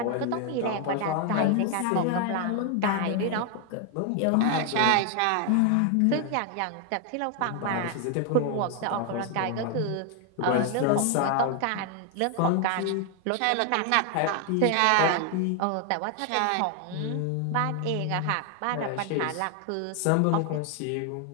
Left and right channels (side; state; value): both; different; correlation 0.00